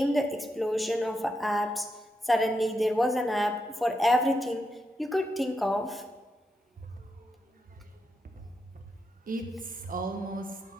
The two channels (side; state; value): both; normal; correlation 0.84